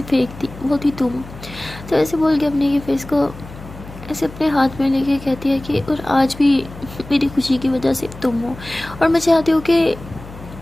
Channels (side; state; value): left; noise; hum, 16 dB below the sound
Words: फेंक थी वो थी तुम। तो ऐसे बोल के अपने ये फेस को ऐसे अपने हाथ में लेके कहती है कि और आज भी मेरी खुशी की वजह से तुम हो, और मैं चाहती हूँ कि